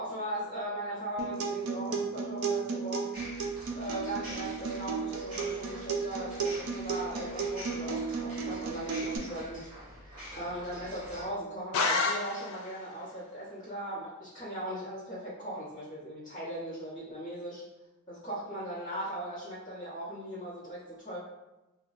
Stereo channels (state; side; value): normal; both; correlation 0.11